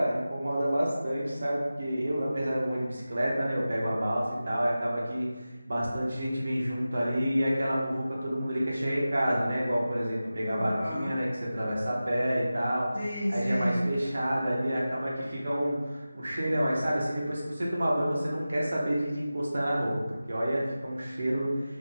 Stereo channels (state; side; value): inverted; both; correlation -0.95